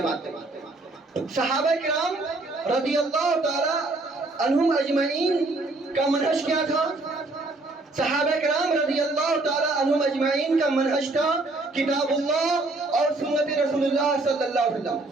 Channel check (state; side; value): quieter; left; 3.1 dB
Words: ہے. صحابہ کرام رضی اللہ تعالی عنہم اجمعین کا منہج کیا تھا؟ صحابہ کرام رضی اللہ تعالی عنہم اجمعین کا منہج تھا کتاب اللہ اور سنت رسول اللہ صلی اللہ علیہ وسلم،